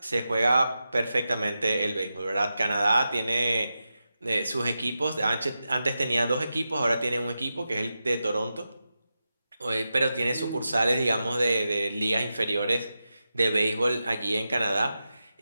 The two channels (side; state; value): both; inverted; correlation -0.90